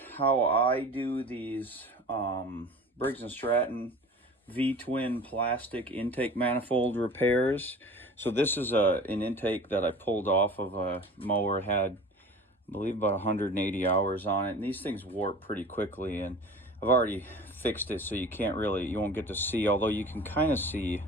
how I do these Briggs Stratton V-twin plastic intake manifold repairs. So this is an intake that I pulled off of a mower. It had, I believe, about 180 hours on it, and these things warp pretty quickly, and I've already fixed it so you won't get to see, although you can kind of see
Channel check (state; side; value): normal; both; correlation 0.40